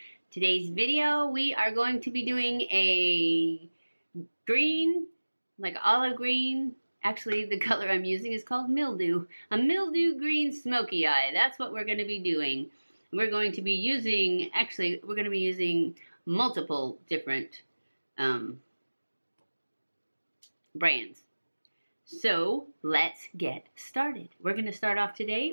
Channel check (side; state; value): both; inverted; correlation -1.00